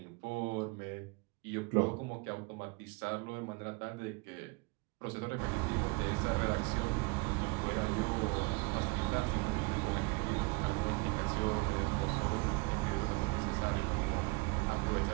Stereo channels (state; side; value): quieter; left; 28.3 dB